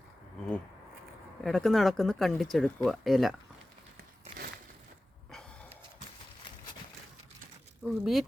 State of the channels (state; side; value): normal; both; correlation 0.96